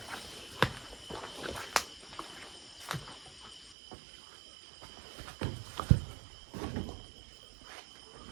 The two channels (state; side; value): drops out; left; at 3.8 s